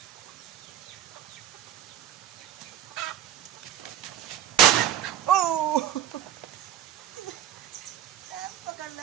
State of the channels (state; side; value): quieter; left; 10.6 dB